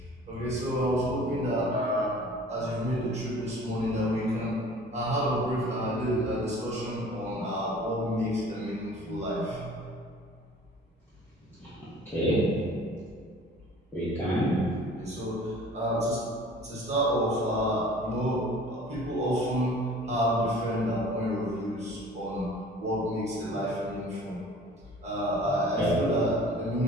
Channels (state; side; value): normal; both; correlation 0.47